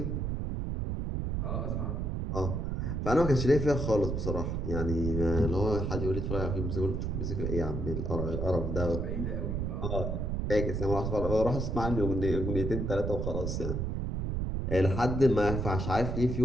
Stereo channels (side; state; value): right; noise; rumble, 1 dB below the sound